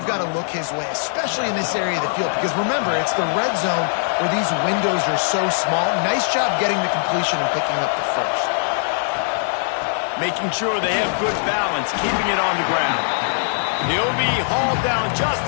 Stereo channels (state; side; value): silent; right; digital silence